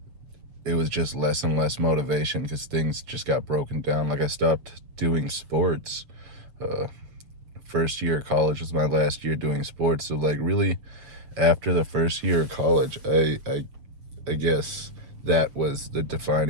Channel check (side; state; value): left; late; 7.6 ms